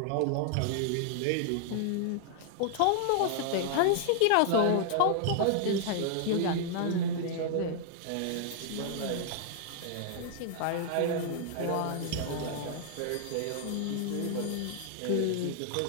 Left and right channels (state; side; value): different; both; correlation -0.01